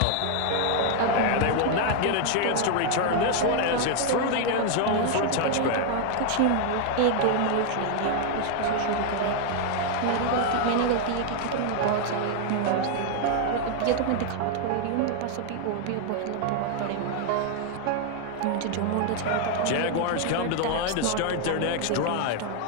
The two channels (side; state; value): both; different; correlation 0.00